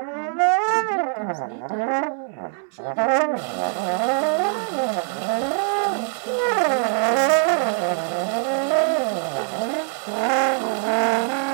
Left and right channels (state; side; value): silent; left; 64 dB below the other